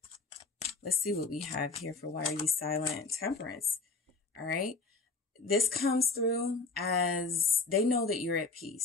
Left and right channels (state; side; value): quieter; right; 3.9 dB